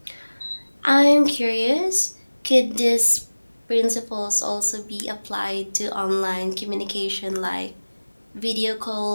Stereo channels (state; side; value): inverted; both; correlation -1.00